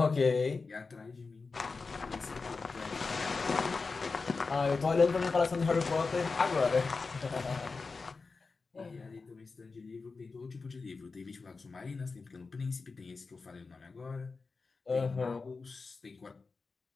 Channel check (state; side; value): quieter; right; 4.3 dB